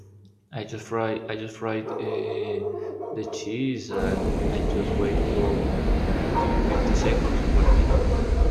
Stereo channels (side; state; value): both; identical; correlation 1.00